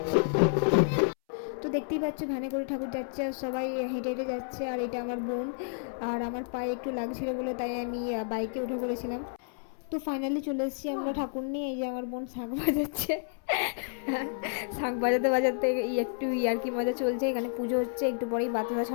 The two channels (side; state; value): right; silent; 57 dB below the other